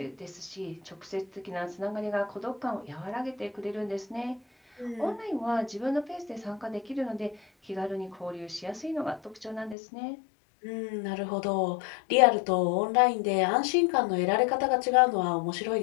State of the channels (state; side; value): drops out; right; at 9.8 s